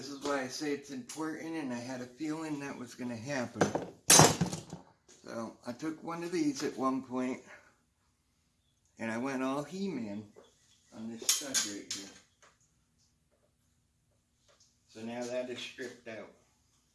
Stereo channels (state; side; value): identical; both; correlation 1.00